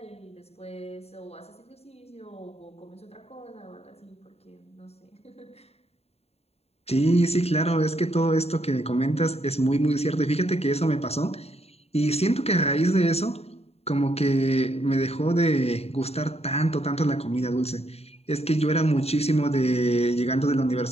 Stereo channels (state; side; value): late; right; 0.30 ms